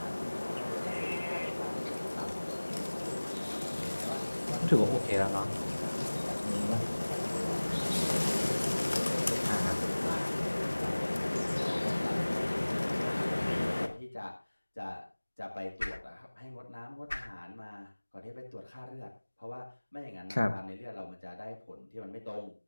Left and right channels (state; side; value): inverted; both; correlation -1.00